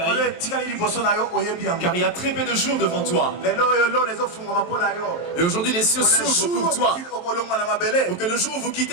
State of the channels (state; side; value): late; right; 23 ms